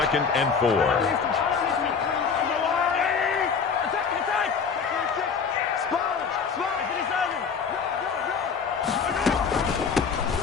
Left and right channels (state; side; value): quieter; right; 6.0 dB